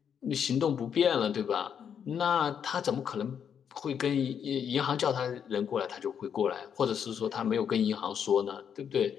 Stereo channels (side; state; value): right; quieter; 7.9 dB